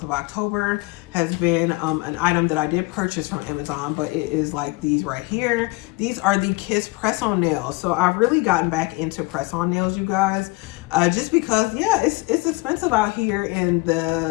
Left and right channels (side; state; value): right; quieter; 24.2 dB